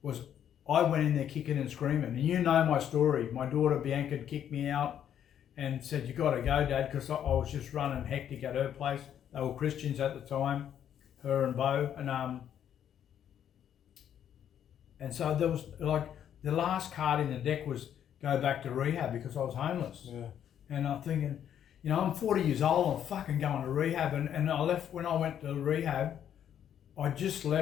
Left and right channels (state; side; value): quieter; right; 9.7 dB